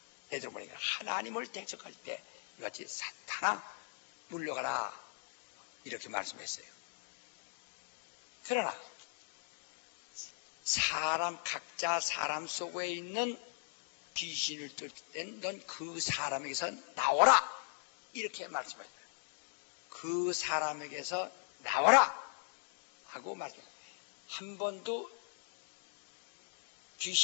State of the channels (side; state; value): right; silent; digital silence